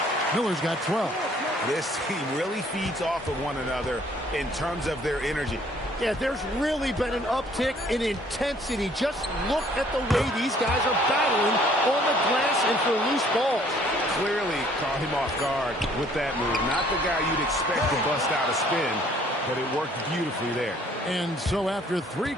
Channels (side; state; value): both; normal; correlation 0.60